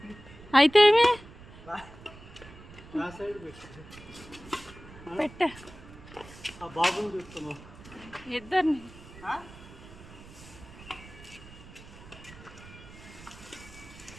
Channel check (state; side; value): noise; right; rumble, 18 dB below the sound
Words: అయితే ఏమి పెట్టా ఇద్దరిని.